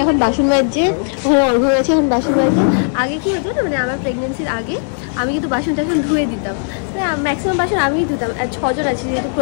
এখন বাসন মাজছে, ওখানে অর্ঘ্য গেছে এখন বাসন মাজছে। আগে কি হতো না, মানে আমার প্রেগনেন্সির আগে আমি কিন্তু বাসন টাসন ধুয়ে দিতাম, ম্যাক্সিমাম বাসন আমিই ধুতাম। আর 6 জন আছি, যেহেতু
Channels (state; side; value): silent; right; 63 dB below the other